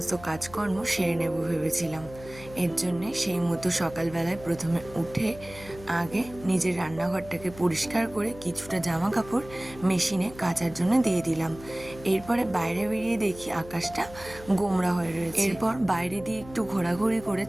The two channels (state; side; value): noise; left; hum, 17 dB below the sound